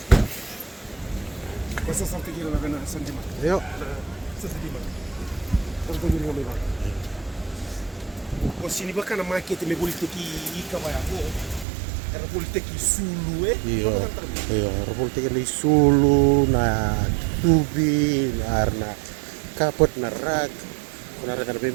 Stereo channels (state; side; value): drops out; left; at 11.7 s